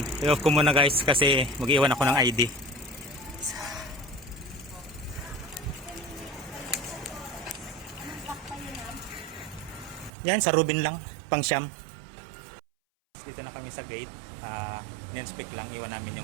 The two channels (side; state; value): left; drops out; at 10.1 s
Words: i-off ko muna guys kasi mag-iwan ako ng ID. Yan, sa Rubin lang, pang Siyam. Dito na kami sa gate. Ninspect lang, iwan namin